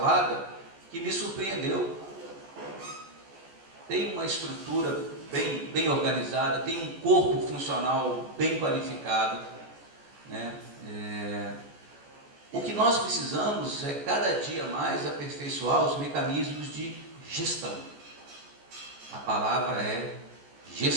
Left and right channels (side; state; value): left; late; 14 ms